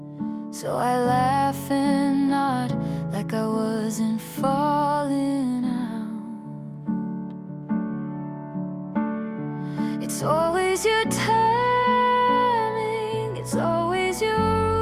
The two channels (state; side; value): identical; both; correlation 1.00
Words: So I laugh and nod like I wasn't falling out. It's always your timing, it's always your